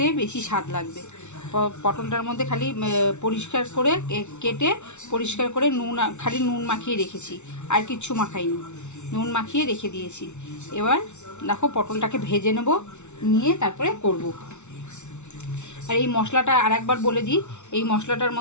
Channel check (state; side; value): late; right; 0.82 ms